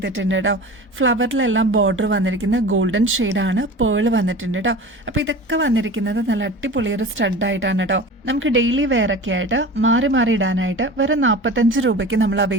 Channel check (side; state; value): both; normal; correlation 0.35